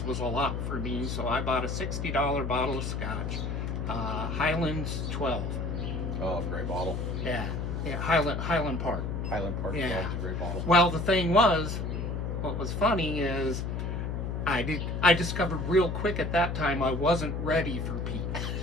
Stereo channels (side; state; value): left; noise; hum, 2 dB below the sound